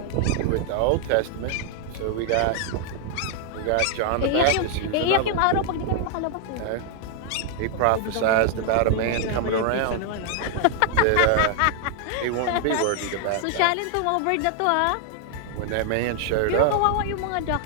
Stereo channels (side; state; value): both; different; correlation 0.00